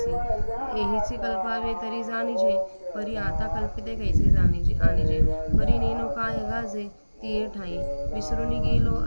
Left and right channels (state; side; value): inverted; both; correlation -1.00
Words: एहीचे कल्पावे तरी जाणीजे. परी आता कल्पिते कैसे आणीजे. परी नेनो काय गाजे तिये ठाई. विसरून गेलो